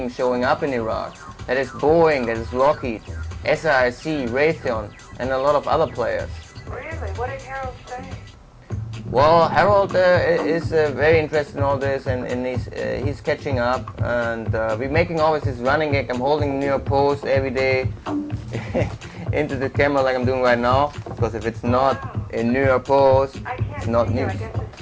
showing up in Iraq. That is Boeing, that is Lockheed, SAIC, Raytheon, and a lot of other players. Really? What did Harold say? Well, Harold is very interested in all this, and he's catching up, and we're making always this running gag. I'm holding the New York Post every day into the camera like I'm doing right now, because if it's not in New York Post, it's not news. I guess the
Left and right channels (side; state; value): both; identical; correlation 1.00